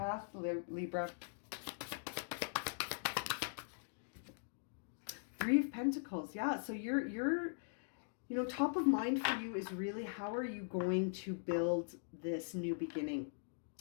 Libra. Three of Pentacles. Yeah, so you're top of mind for you is really how are you going to build this new beginning?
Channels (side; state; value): right; silent; digital silence